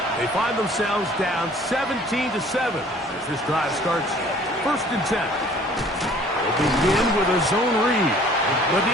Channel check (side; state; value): both; normal; correlation 0.53